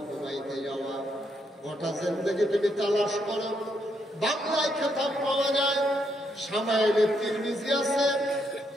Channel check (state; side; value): normal; both; correlation 0.77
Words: ঘুমাইতে যাওয়া, গোটা জিন্দেগি তুমি তালাশ করো। বাংলায় খেতাব পাওয়া যায়, সামাইলে তিরমিজি আছে,